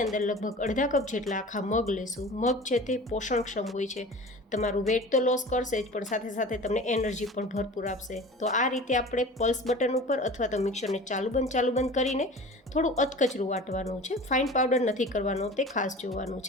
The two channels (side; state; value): both; normal; correlation 0.38